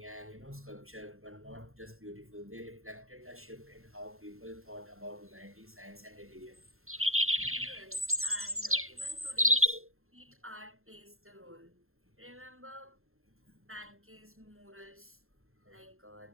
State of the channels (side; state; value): left; late; 0.61 ms